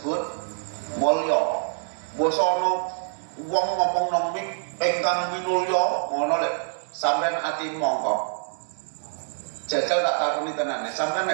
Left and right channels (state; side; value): silent; left; digital silence